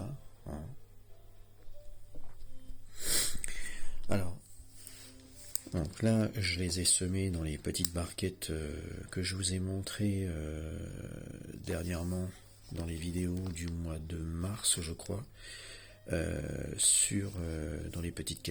Voilà. Alors, donc là, je les ai semés dans les petites barquettes que je vous ai montrées dernièrement dans les vidéos du mois de mars, je crois, dans les petites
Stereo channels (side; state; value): both; identical; correlation 1.00